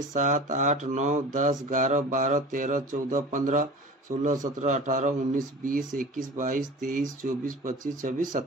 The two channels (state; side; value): normal; both; correlation 0.38